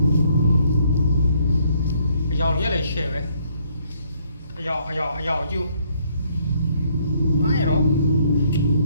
အယောင်ရက်လည်းရှယ်ပဲအယောင်ကျူဘာရော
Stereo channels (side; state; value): both; inverted; correlation -0.67